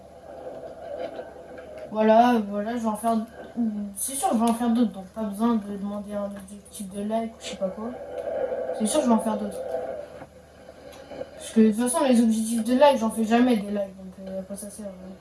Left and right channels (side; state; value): both; identical; correlation 1.00